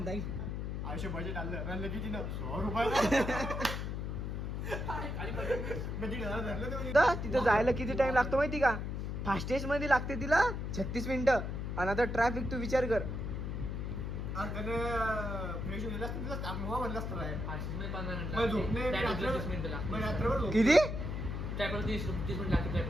आयुष्य बजेट आणलं रनलं किती ना 100 रुपये तिथं जायला किती टाइम लागतो माहिती का फास्टेस्ट मध्ये लागते तिला 36 मिनिटं आणि आता ट्रॅफिक तू विचार कर फ्रेश होईल असतं तिला आपलं म्हणलं असतं राय. 5 मग झोपणे मी रात्रभर झोप. किती 30 मिनिट लागते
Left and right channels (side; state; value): left; noise; hum, 3 dB below the sound